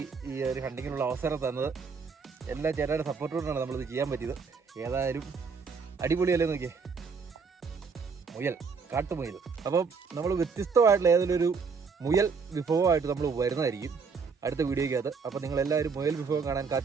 ഈ ഒരു ഹണ്ടിങ്ങിനുള്ള അവസരം തന്നത് എല്ലാ ചേട്ടായുടെ സപ്പോർട്ടോടാണ് നമ്മളിത് ചെയ്യാൻ പറ്റിയത്. ഏതായാലും അടിപൊളിയല്ലേ നോക്കിയേ. മുയൽ, കാട്ടുമുയൽ. അപ്പം നമ്മൾ വ്യത്യസ്തമായിട്ടുള്ള ഏതെങ്കിലും ഒരു മുയൽ വിഭവമായിട്ട് നമ്മൾ വരുന്നതായിരിക്കും അടുത്ത വീഡിയോയ്ക്കകത്ത്. അപ്പോൾ നിങ്ങളെല്ലാവരും മുയൽ വിഭവം കാണാൻ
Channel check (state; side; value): quieter; left; 5.2 dB